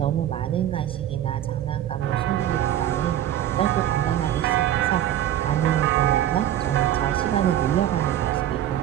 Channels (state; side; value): quieter; left; 11.8 dB